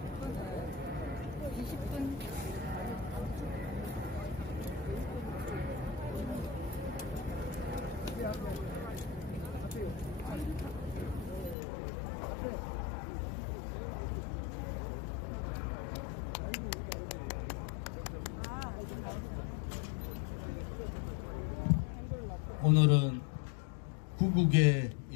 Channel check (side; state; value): right; drops out; at 11.6 s